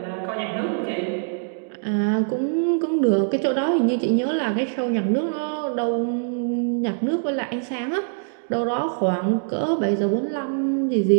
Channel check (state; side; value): silent; left; digital silence